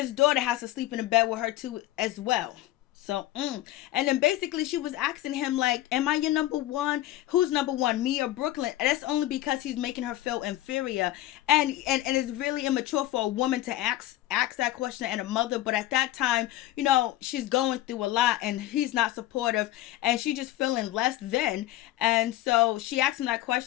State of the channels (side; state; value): right; quieter; 15.0 dB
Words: daughter has to sleep in a bed with her too as well. So, and then basically she was asking him, like, am I your number one? Who's number one, me or Brooklyn? And that's only because he's making her feel inferior. And it's really immature for a woman to ask that question and a mother. But at that time, you know, she's going through a lot and he's not supportive, and she just feeling less than. And so she asked him that